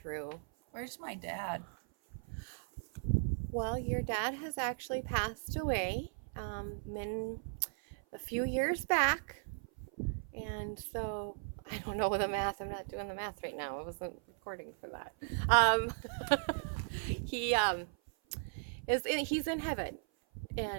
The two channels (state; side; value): silent; left; 53 dB below the other